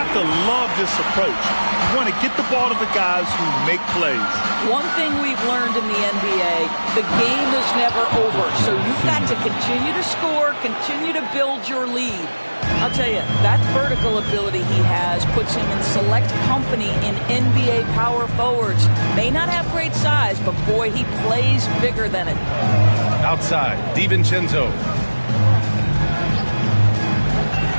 to love this approach. You want to get the ball to the guys who make plays. One thing we've learned in the NBA, the game is never over. So you've got to continue to score, continue to build your lead. I'll tell you, that vertical ability he has puts him in select company in NBA power forwards. May not have great size, but boy, he plays bigger than it. Outside, DiVincenzo.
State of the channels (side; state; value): both; inverted; correlation -1.00